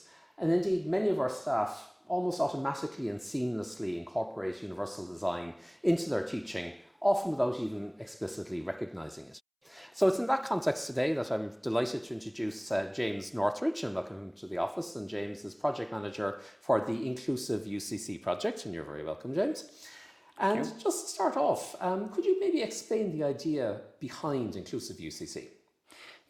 And indeed, many of our staff almost automatically and seamlessly incorporate universal design into their teaching, often without even explicitly recognising it. So it's in that context today that I'm delighted to introduce James Northridge and welcome him to the office. And James is project manager for the Inclusive UCC project, and you're very welcome, James. And just to start off, could you maybe explain the idea behind Inclusive UCC?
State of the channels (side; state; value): both; identical; correlation 1.00